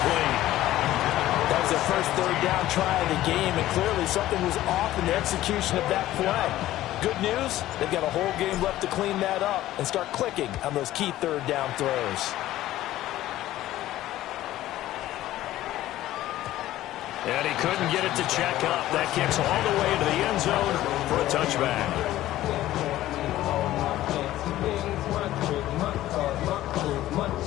That was their first third down try of the game, and clearly something was off in the execution of that play. Good news, they've got a whole game left to clean that up and start clicking on those key third down throws. And he couldn't get it to check up. That kicks all the way to the end zone for a touchback.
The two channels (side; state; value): right; quieter; 14.6 dB